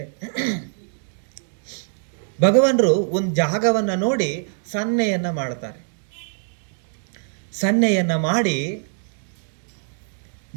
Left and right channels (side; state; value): left; silent; 64 dB below the other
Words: ಭಗವಾನರು ಒಂದು ಜಾಗವನ್ನು ನೋಡಿ ಸನ್ನೆಯನ್ನು ಮಾಡ್ತಾರೆ. ಸನ್ನೆಯನ್ನು ಮಾಡಿ